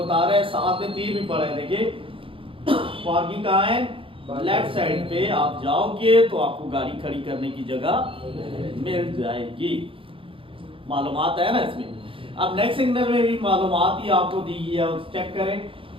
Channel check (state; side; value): late; left; 0.26 ms